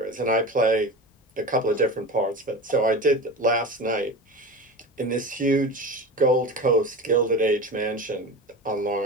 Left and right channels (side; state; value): both; normal; correlation 0.29